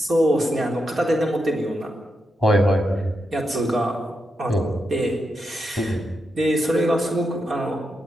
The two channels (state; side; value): normal; both; correlation 0.85